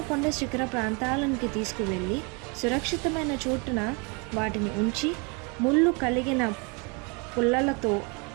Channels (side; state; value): left; quieter; 32.0 dB